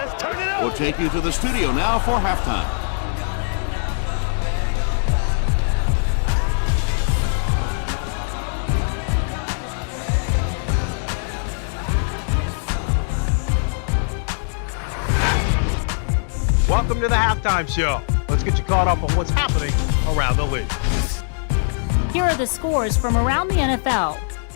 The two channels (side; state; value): right; silent; 65 dB below the other